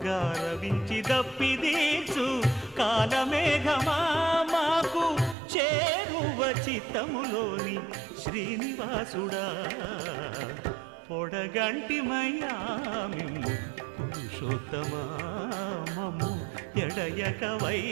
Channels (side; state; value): left; drops out; at 5.4 s